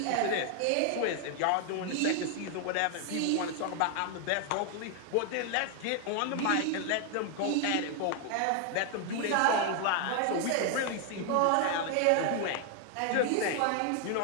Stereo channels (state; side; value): different; both; correlation 0.00